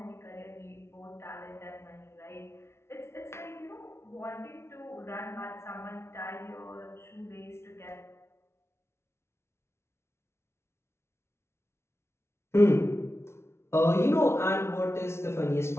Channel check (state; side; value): late; right; 0.13 ms